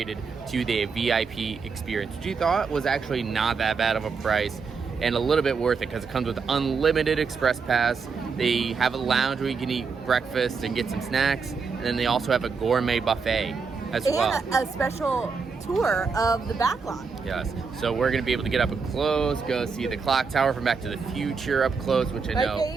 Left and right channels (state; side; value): quieter; left; 5.2 dB